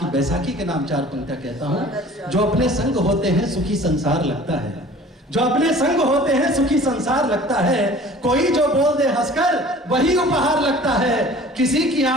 बैसाखी के नाम 4 पंक्तियां कहता हूं। जो अपने संग होते हैं सुखी संसार लगता है, जो अपने संग होते हैं सुखी संसार लगता है, कोई जो बोल दे हंसकर वही उपहार लगता है, किसी की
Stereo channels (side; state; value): both; normal; correlation 0.47